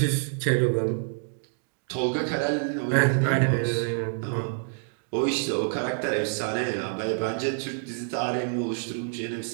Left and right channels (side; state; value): left; silent; digital silence